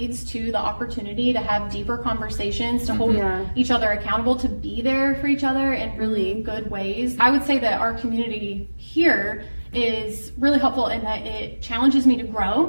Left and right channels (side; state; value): both; inverted; correlation -1.00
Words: to the opportunity to have deeper conversations, to hold each other accountable, to be there for each other in really good ways. I would say that our community here is really helpful in that it challenges me to grow.